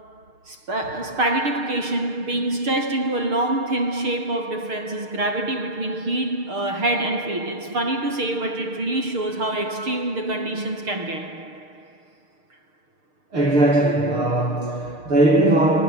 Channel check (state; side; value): late; left; 6.6 ms